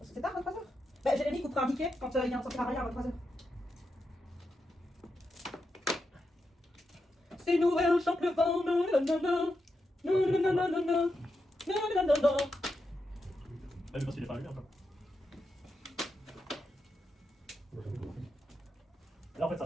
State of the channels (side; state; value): both; normal; correlation 0.86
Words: C'est tard, 23h. Bah, Jérémy coupera un ticket quand il y a un sortir à rien à 23h. C'est Noël, chante le vent, nanana. Nanana. Nanana. Ah, mais parce qu'il est pas allumé encore. Là, en fait,